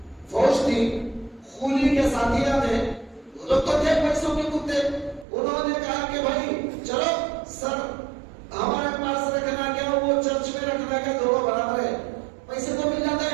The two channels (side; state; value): left; drops out; at 5.2 s